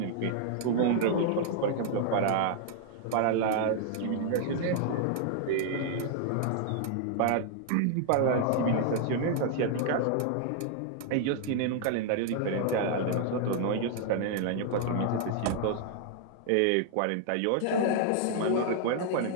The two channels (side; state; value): both; different; correlation 0.00